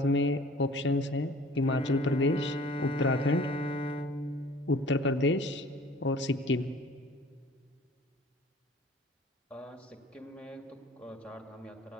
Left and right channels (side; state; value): both; normal; correlation 0.49